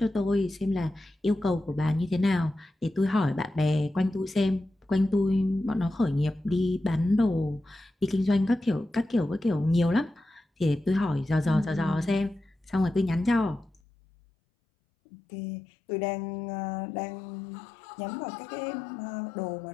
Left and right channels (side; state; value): right; drops out; at 13.8 s